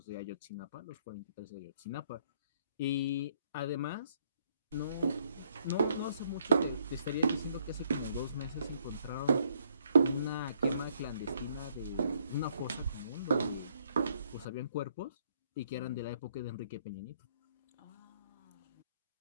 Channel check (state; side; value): inverted; both; correlation -0.68